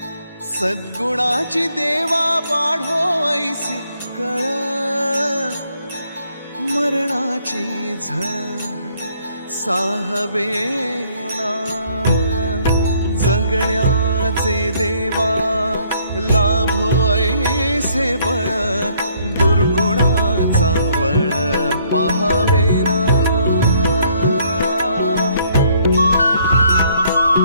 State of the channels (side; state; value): both; inverted; correlation -0.65